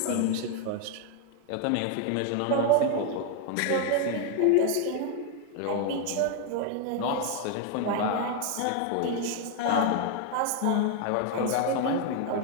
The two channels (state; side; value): different; both; correlation 0.01